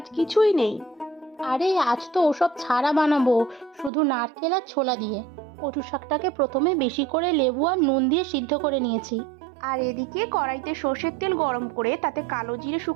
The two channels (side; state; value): left; drops out; at 3.9 s